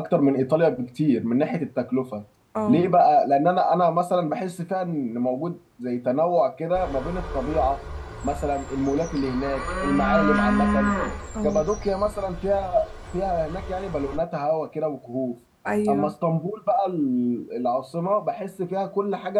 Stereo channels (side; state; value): both; identical; correlation 1.00